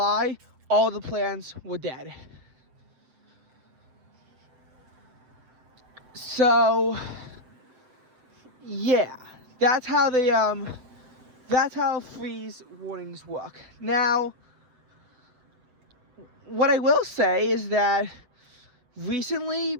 all the plants were dead. So yeah, that's how freeze warnings work. Now, what I will say is that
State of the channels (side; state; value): left; late; 7.9 ms